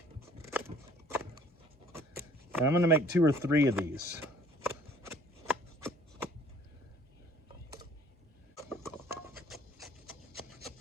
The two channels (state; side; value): normal; both; correlation 0.55